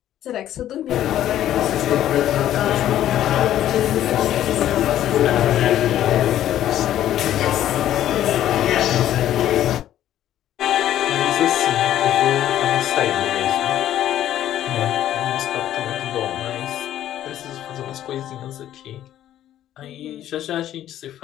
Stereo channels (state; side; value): quieter; right; 12.1 dB